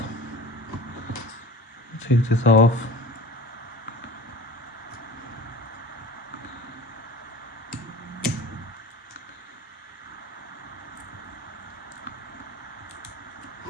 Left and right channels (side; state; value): both; normal; correlation 0.38